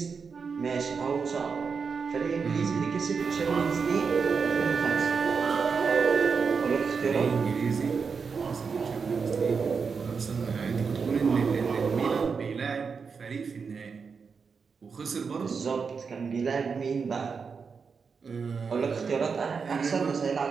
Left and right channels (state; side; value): quieter; left; 5.5 dB